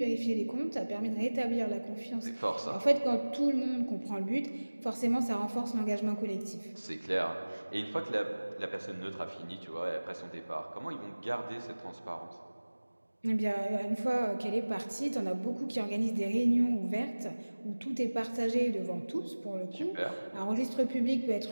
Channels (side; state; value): both; inverted; correlation -1.00